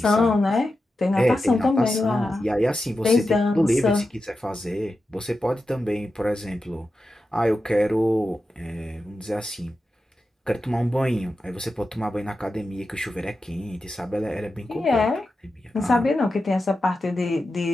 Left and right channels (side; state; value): both; normal; correlation 0.91